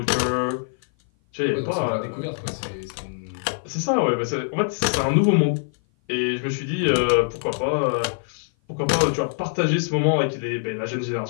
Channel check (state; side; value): silent; right; 56 dB below the other